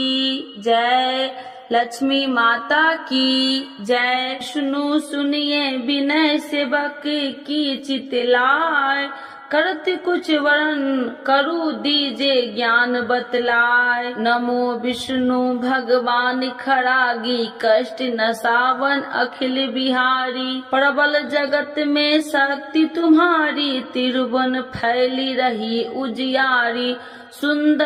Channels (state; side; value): identical; both; correlation 1.00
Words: जय, लक्ष्मी माता की जय। सुनो सुनिए विनय सेवक की चितलाय, करत कुछ वरण करु दीजे ज्ञान बतलाय। नमो विष्णु भगवान खरागी, कष्ट नसावन अखिल बिहारी। प्रबल जगत में शक्ति तुम्हारी, तिरुवन फैली रही उजियारी।